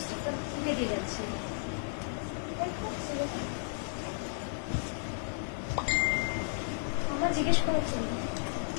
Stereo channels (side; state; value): right; silent; digital silence